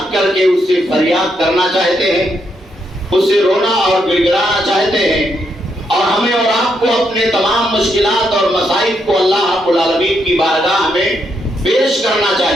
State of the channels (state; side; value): normal; both; correlation 0.78